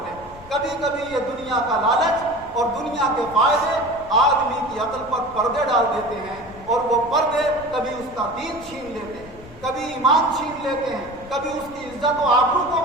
لیں۔ کبھی کبھی یہ دنیا کا لالچ اور دنیا کے فائدے آدمی کی عقل پر پردے ڈال دیتے ہیں، اور وہ پردے کبھی اس کا دین چھین لیتے ہیں، کبھی ایمان چھین لیتے ہیں، کبھی اس کی عزت و آبرو کو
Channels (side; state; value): left; noise; rumble, 19 dB below the sound